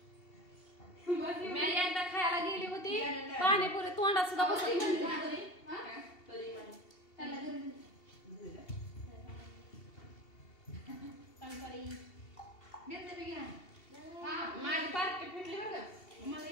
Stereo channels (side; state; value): right; late; 2.7 ms